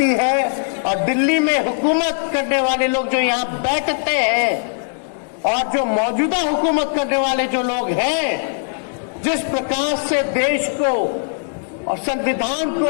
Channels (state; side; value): silent; right; digital silence